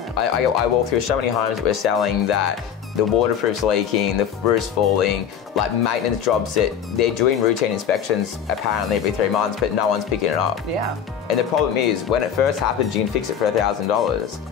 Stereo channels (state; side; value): quieter; right; 8.4 dB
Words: I walk through so many homes that we're selling that the waterproof's leaking, the roof's falling, like maintenance jobs that they're doing routine inspections apparently every 3 months, but no one's picking it up. And the problem is, when it first happens, you can fix it for